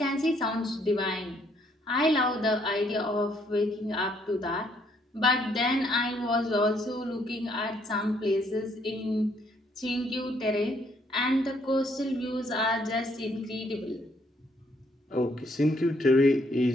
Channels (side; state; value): both; normal; correlation 0.69